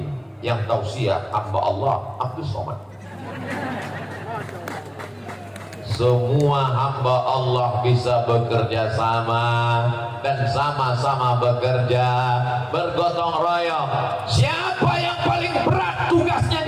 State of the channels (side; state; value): both; identical; correlation 1.00